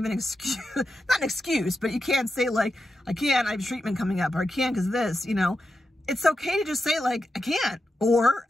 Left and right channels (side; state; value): both; normal; correlation 0.89